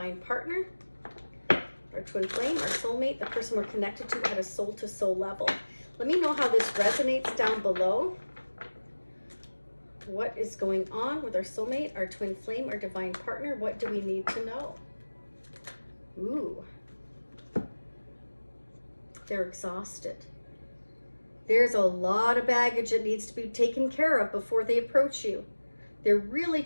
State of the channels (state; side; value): inverted; both; correlation -1.00